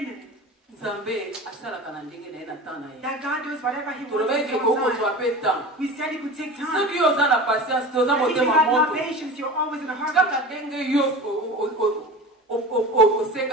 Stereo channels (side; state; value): both; normal; correlation 0.33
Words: nzambe asalaka na ndenge na ye na temps na ye that God does whatever He wants tolobaki in ke His own kokozwa time. mpe temps We said it could take time. soki yo oza na patience te oza If you motema have no moto patience, you're always in a hurry. kaka ndenge yo